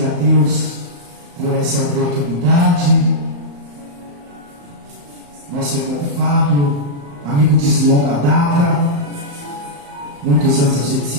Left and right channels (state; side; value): late; left; 35 ms